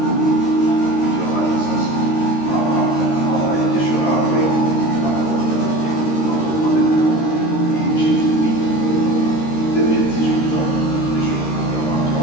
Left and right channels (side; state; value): right; late; 13 ms